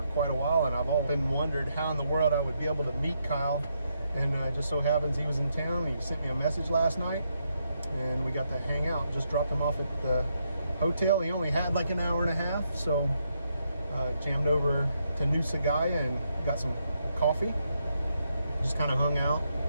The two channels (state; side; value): inverted; both; correlation -0.79